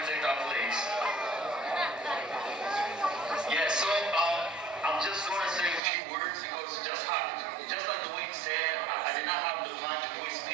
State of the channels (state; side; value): drops out; left; at 5.8 s